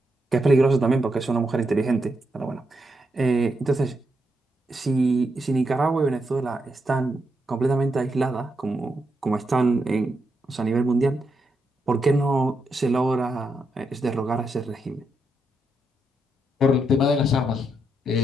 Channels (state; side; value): normal; both; correlation 0.82